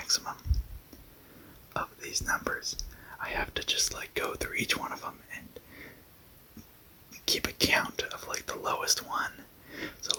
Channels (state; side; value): identical; both; correlation 1.00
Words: of these numbers, I have to just go through each one of them and keep a count of the lowest one. So